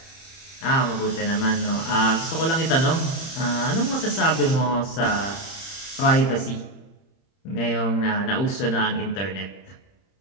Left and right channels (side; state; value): right; late; 30 ms